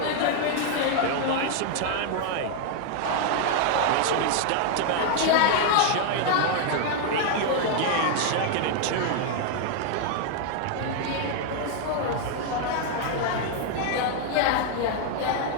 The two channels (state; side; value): different; both; correlation 0.00